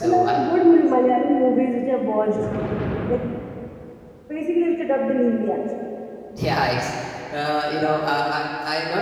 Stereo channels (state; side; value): identical; both; correlation 1.00